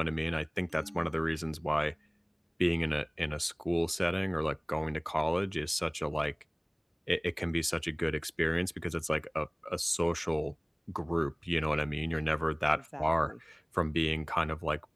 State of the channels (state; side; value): identical; both; correlation 1.00